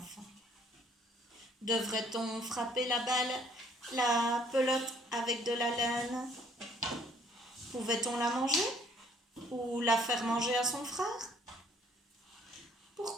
Devrait-on frapper la pelote avec de la laine? Pouvait-on la manger ou la faire manger à son frère?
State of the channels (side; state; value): both; normal; correlation 0.62